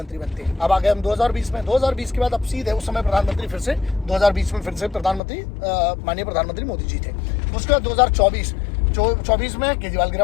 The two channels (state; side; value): drops out; right; at 5.2 s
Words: बनते हैं। अब आ गए हम 2020 में। 2020 के बाद अब सीधे उस समय प्रधानमंत्री फिर से 2020 में फिर से प्रधानमंत्री माननीय प्रधानमंत्री मोदी जी थे। उसके बाद 2024 में केजरीवाल